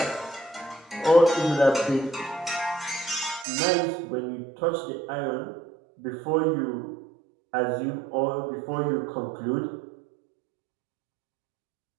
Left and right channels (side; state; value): left; drops out; at 3.5 s